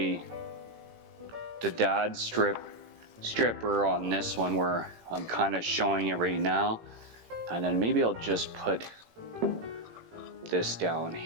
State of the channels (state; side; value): late; left; 18 ms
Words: the Dodds stripper on this one where I'm kind of showing it right now. And then maybe I'll just put this down